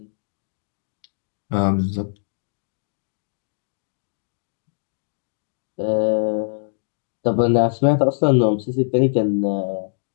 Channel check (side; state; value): right; silent; digital silence